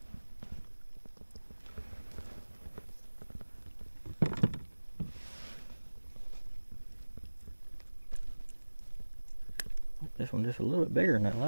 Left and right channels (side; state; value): both; inverted; correlation -1.00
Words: This one just a little bit bigger than that